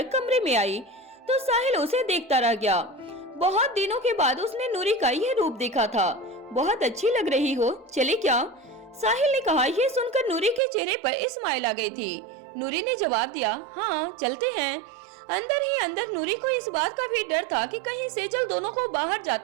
कमरे में आई तो साहिल उसे देखता रह गया। बहुत दिनों के बाद उसने नूरी का यह रूप देखा था। बहुत अच्छी लग रही हो, चले क्या? साहिल ने कहा। यह सुनकर नूरी के चेहरे पर स्माइल आ गई थी। नूरी ने जवाब दिया, हाँ चलते हैं। अंदर ही अंदर नूरी को इस बात का भी डर था कि कहीं सेजल दोनों को बाहर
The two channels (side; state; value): left; drops out; at 10.6 s